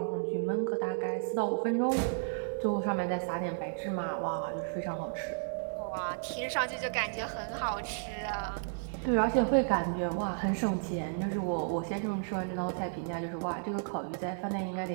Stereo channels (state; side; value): silent; left; digital silence